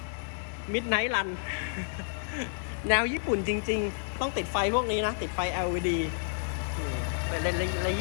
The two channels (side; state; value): right; silent; 58 dB below the other